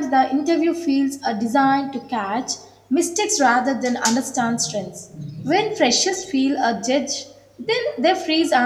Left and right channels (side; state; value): both; identical; correlation 1.00